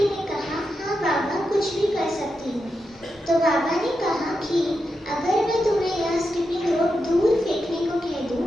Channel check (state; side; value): normal; both; correlation 0.87